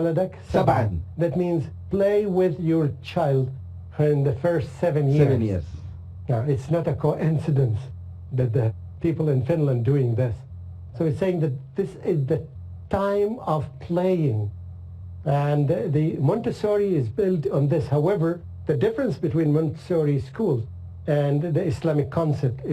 سبعا. That means play with your child in the first 7 years. 7 years. Now, it's not a coincidence that the people in Finland doing this. So it's saying that this is the time of playing. And the Montessori is built on this. However, the difference between Montessori schools and the Islamic concept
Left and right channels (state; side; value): identical; both; correlation 1.00